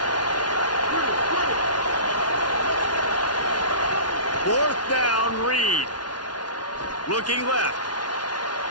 Fourth down, Reed. Looking left.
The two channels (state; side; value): late; right; 0.70 ms